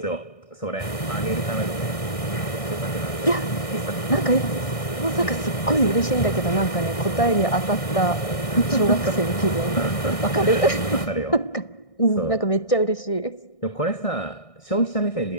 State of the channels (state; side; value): late; right; 1.6 ms